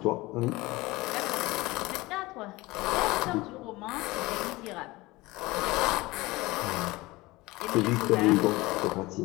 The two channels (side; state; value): right; quieter; 20.8 dB